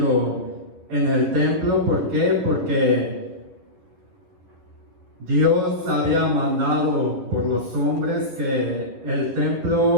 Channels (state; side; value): late; left; 11 ms